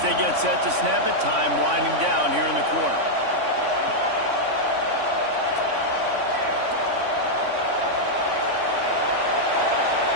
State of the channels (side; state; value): left; late; 3.5 ms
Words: they get set to snap it, time winding down here in the quarter.